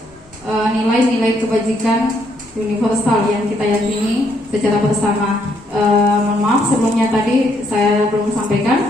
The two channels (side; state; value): both; normal; correlation 0.72